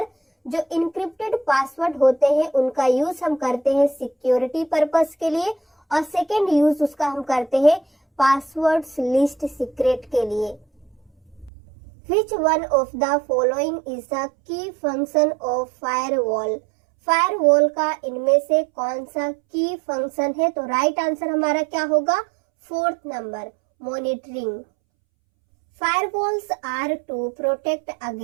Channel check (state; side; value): drops out; left; at 11.5 s